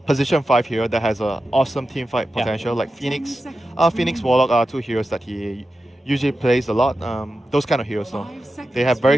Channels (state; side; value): normal; both; correlation 0.92